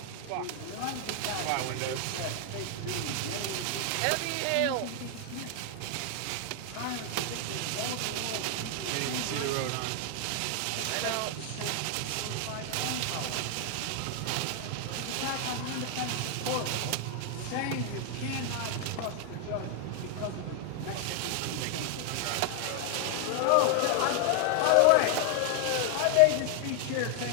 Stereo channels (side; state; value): both; different; correlation 0.00